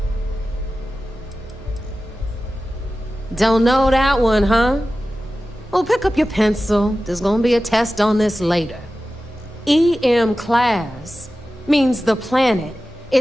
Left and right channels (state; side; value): normal; both; correlation 0.95